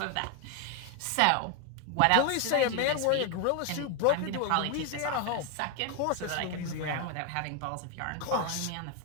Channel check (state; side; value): different; both; correlation 0.01